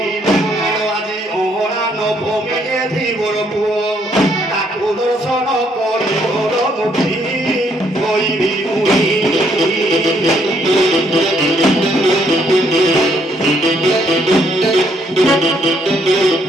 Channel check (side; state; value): both; normal; correlation 0.70